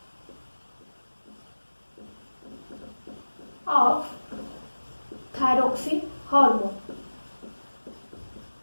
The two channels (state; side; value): inverted; both; correlation -1.00